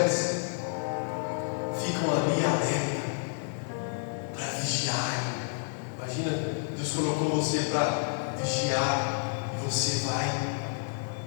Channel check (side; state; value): right; silent; digital silence